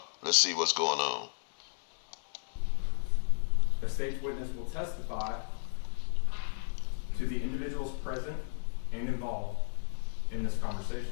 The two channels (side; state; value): right; silent; digital silence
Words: Let's see what's going on. The state's witness will testify to the individuals present and involved in this